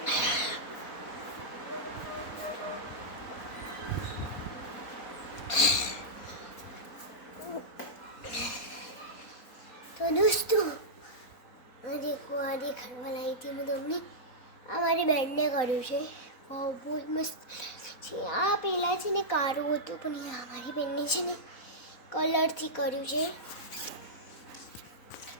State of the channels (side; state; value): right; late; 4.0 ms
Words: તો દોસ્તો આ દેખાડવા લાવી હતી હું તમને. આ મારી બેનને કર્યું છે. બહુ મસ્ત પછી આ પેલા છે ને કારું હતું પણ આ મારી બેનને છે ને કલરથી કર્યું છે